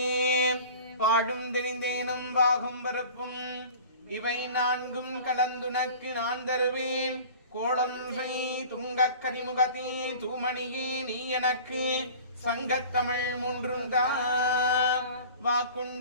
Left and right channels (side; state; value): both; inverted; correlation -0.42